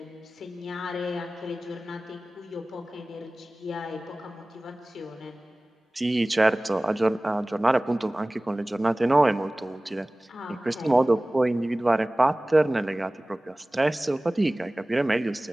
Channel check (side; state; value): both; normal; correlation 0.98